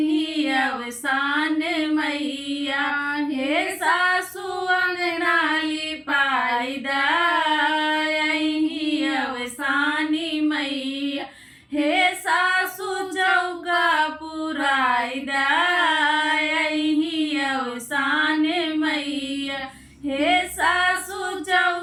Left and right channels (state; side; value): identical; both; correlation 1.00